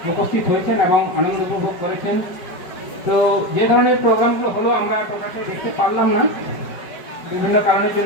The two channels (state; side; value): late; right; 4.9 ms